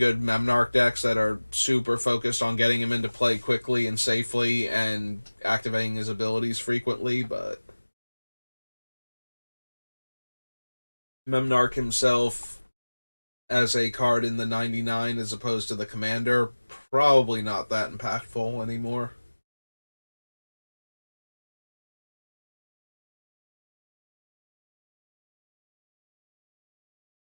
Memnarch decks that are super focused on getting him into play quickly and safely and activating his abilities frequently, but Memnarch himself, as a card in the 99 as opposed to the Commander, probably not that impactful anymore.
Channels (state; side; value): inverted; both; correlation -1.00